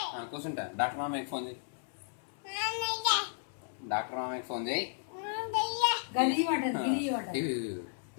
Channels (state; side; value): silent; right; 55 dB below the other